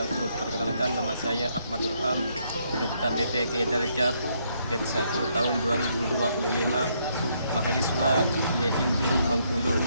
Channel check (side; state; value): both; inverted; correlation -0.73